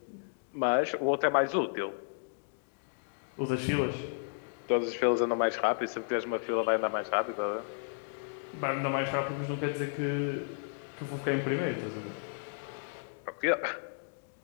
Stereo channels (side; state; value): right; silent; digital silence